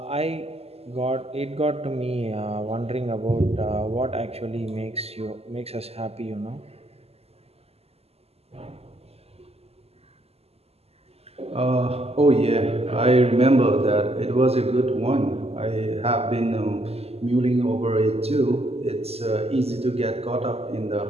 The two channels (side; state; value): left; late; 0.29 ms